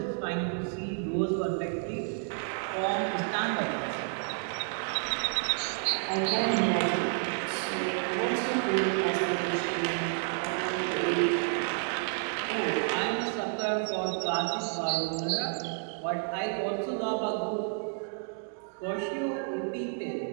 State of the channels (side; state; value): left; silent; 58 dB below the other